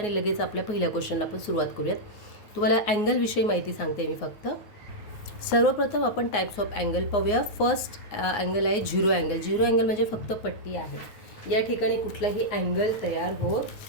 लगेच आपल्या पहिल्या क्वेश्चनला आपण सुरुवात करूयात. तुम्हाला अँगलविषयी माहिती सांगते मी फक्त. सर्वप्रथम आपण टाईप्स ऑफ अँगल पाहूया. फर्स्ट अँगल आहे झिरो अँगल. झिरो अँगल म्हणजे फक्त पट्टी आहे. या ठिकाणी कुठलाही अँगल तयार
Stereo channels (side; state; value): right; late; 9.3 ms